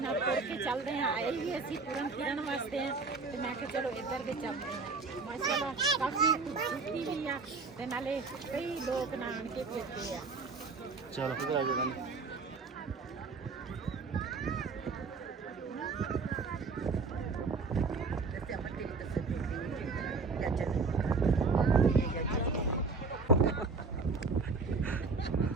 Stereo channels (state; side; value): quieter; left; 4.3 dB